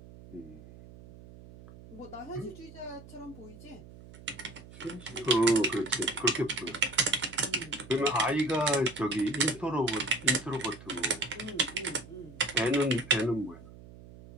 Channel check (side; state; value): right; noise; hum, 18 dB below the sound